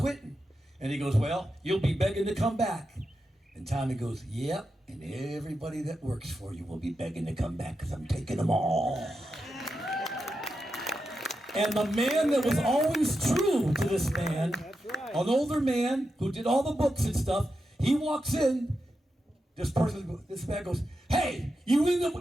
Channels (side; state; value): both; normal; correlation 0.88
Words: And he goes, well, you'll be begging to come back. And Tommy goes, yep. And everybody that works for you will be begging to come back because I'm taking them all. And the man that was always true to this man, an older man who did all the books and stuff, he walks in. This man goes, hey, you